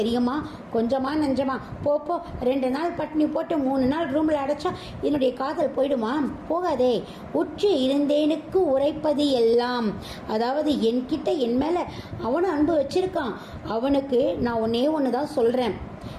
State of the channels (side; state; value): both; identical; correlation 1.00